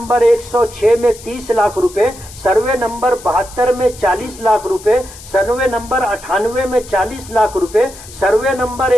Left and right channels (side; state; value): left; noise; hiss, 17 dB below the sound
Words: 106 में 30 लाख रुपए, सर्वे नंबर 72 में 40 लाख रुपए, सर्वे नंबर 98 में 40 लाख रुपए, सर्वे नंबर